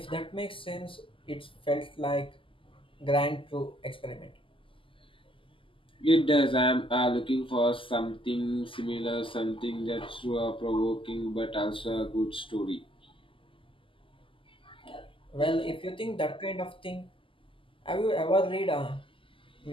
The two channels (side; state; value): right; late; 0.25 ms